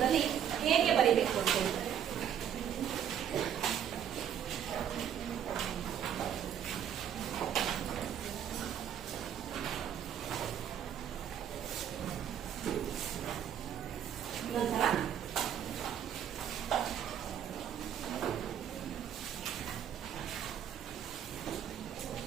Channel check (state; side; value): quieter; left; 9.4 dB